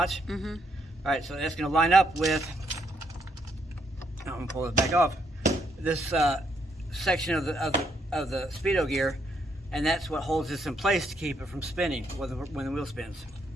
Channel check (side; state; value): both; normal; correlation 0.74